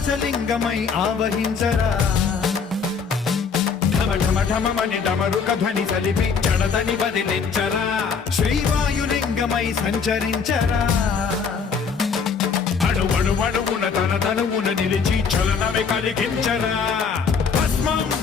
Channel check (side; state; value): right; quieter; 5.8 dB